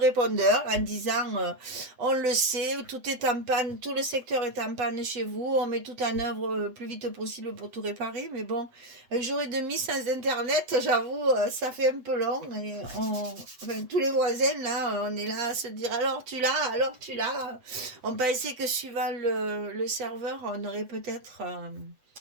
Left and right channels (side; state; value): left; late; 7.9 ms